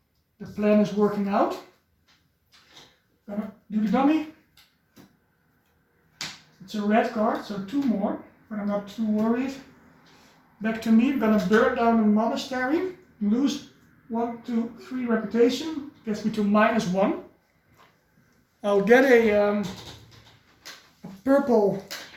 the plan is working out. Gonna do the dummy. It's a red card, so 2 more, but I'm not too worried. Back to me, I'm gonna burn down the monastery, lose 1, 2, 3 reputation, gets me to -1. I'll get a purple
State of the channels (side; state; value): both; identical; correlation 1.00